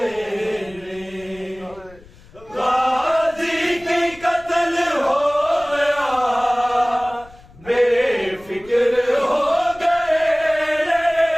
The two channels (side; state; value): left; noise; rumble, 23 dB below the sound